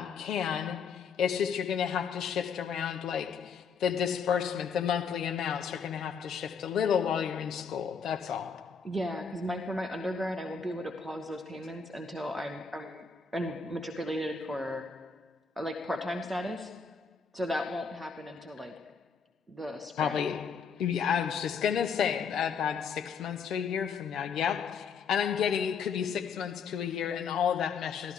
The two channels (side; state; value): right; quieter; 6.0 dB